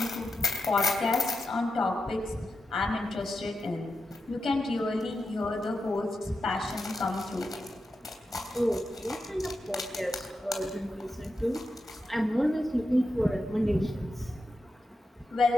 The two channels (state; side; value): normal; both; correlation 0.87